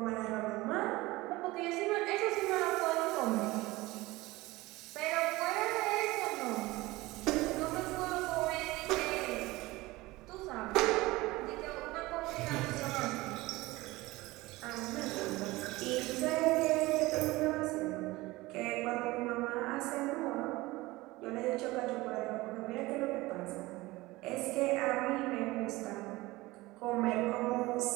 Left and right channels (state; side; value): quieter; left; 20.2 dB